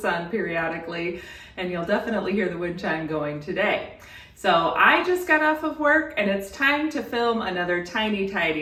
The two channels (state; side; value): identical; both; correlation 1.00